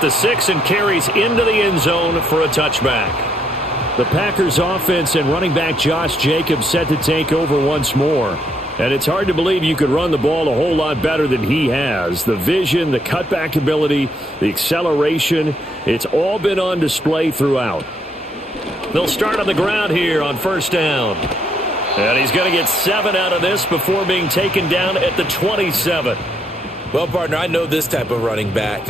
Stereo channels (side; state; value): both; normal; correlation 0.72